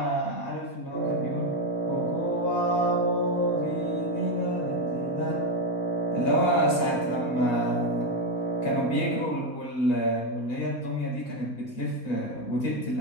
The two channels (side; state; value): right; late; 4.2 ms